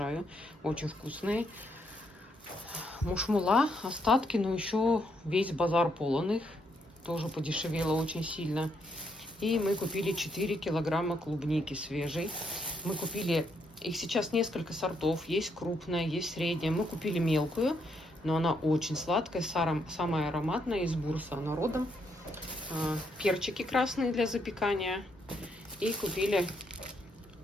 Очень вкусные. Мушмула, остатки, но еще весь базар полон их. Тоже подешевело очень сильно. И мы купили 4 килограмма клубники свежей. Мы купили, их сейчас несколько сортов. Есть крупная, есть средняя. Мы купили мелкую, но она очень сладкая, самая ароматная, из Бурса она родом. Перчики красные для запекания. И купили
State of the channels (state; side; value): normal; both; correlation 0.76